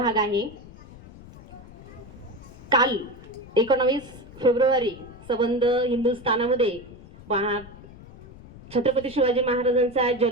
आहे। काल 19 फेब्रुवारी संबंध हिंदुस्थानामध्ये छत्रपती शिवाजी महाराजांचा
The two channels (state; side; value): noise; left; rumble, 18 dB below the sound